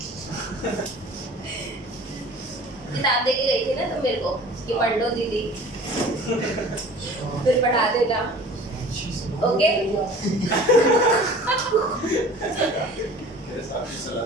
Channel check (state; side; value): normal; both; correlation 0.44